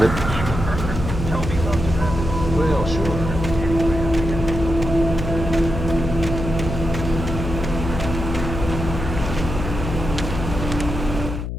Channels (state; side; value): noise; left; hum, 5 dB below the sound